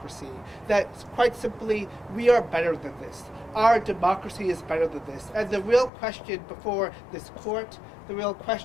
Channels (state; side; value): drops out; right; at 5.9 s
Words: That quite simply, we are better than this. Our democracy is better than this. And the real question before this court, the real